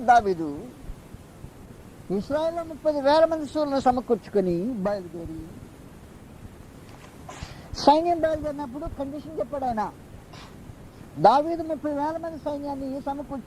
దావీదు ఇశ్రాయేలులో 30,000 మంది శూరులను సమకూర్చుకొని బయలుదేరి, సైన్యం బయలుదేరినప్పుడు కండిషన్ చెప్పాడు ఆయన. దావీదు 30,000 మంది సైన్యాన్ని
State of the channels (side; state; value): both; identical; correlation 1.00